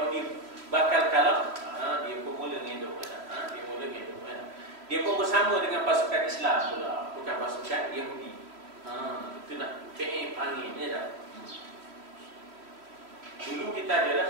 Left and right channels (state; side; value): late; left; 3.1 ms